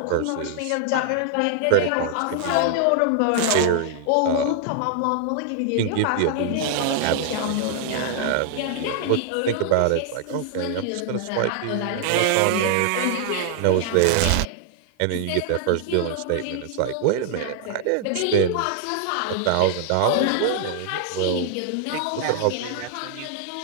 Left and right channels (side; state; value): both; different; correlation -0.01